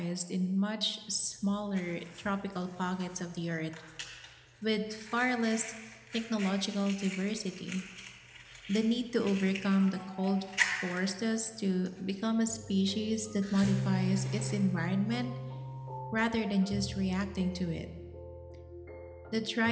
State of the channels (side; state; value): both; identical; correlation 1.00